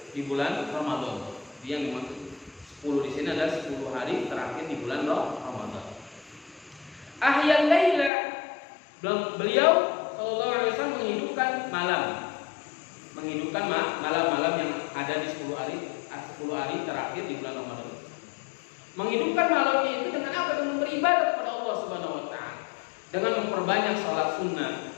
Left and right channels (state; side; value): drops out; right; at 8.1 s